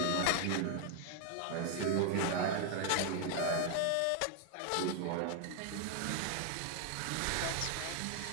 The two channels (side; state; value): both; different; correlation 0.00